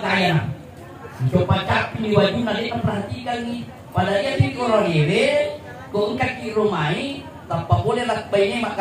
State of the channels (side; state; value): both; identical; correlation 1.00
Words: gaya nak. Coba capi di wajib nanti perhatikan ni. Pada dia di orang ewe kau engkau di rumai tanpa boleh nak baiknya mak